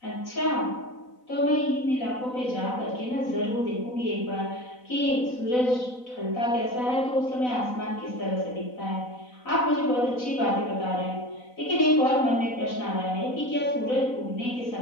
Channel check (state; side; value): late; right; 4.0 ms